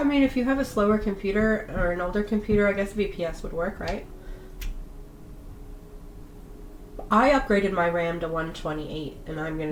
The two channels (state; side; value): identical; both; correlation 1.00